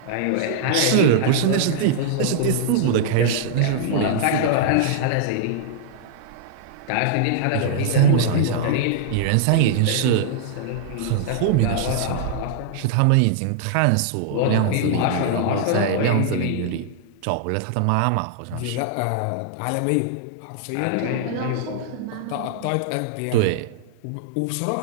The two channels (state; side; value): different; both; correlation -0.01